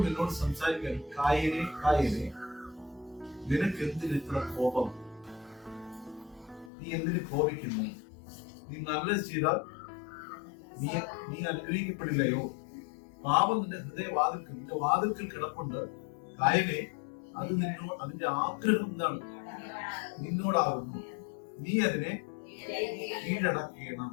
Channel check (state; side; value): drops out; right; at 6.7 s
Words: നിന്നോട് സംസാരിക്കാൻ, കായനെ കായനെ, നിനക്ക് എന്തിന് ഇത്ര കോപം? നീ എന്തിന് കോപിക്കുന്നു? നീ നല്ലത് ചെയ്താൽ നീ അനുഗ്രഹിക്കപ്പെടില്ലയോ? പാപം നിന്റെ ഹൃദയവാതിൽക്കൽ, നിന്റെ വാതിൽക്കൽ കിടപ്പുണ്ട്. കായനെ, അത് അതിന്റെ ആഗ്രഹം എന്താണ്? നിന്നോടാകുന്നു. നീ അതിനെ കീഴടക്കണം.